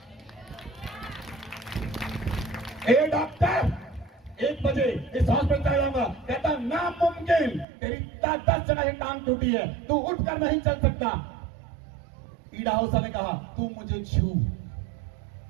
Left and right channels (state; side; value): drops out; left; at 7.7 s